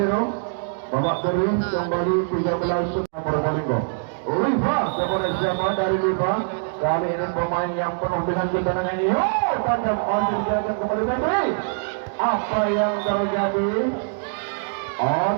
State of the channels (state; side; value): silent; left; digital silence